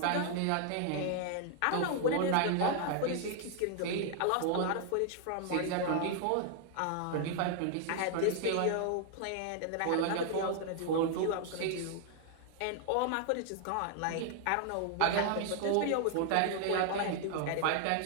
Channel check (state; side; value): different; both; correlation 0.00